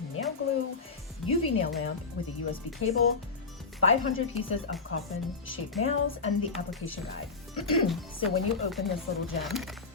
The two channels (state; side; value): quieter; right; 4.5 dB